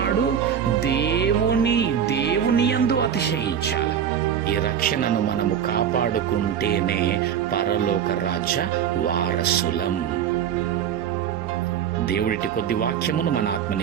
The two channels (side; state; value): left; quieter; 8.7 dB